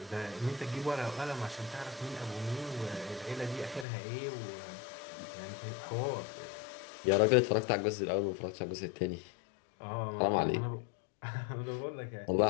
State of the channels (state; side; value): drops out; right; at 3.9 s